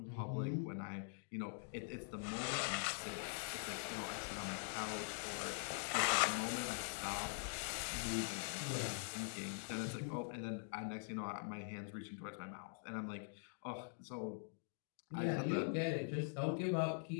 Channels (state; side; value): silent; right; digital silence